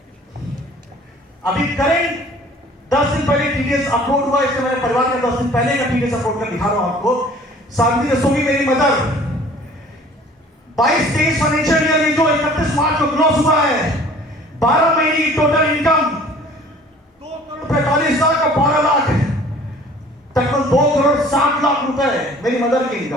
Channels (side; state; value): both; normal; correlation 0.50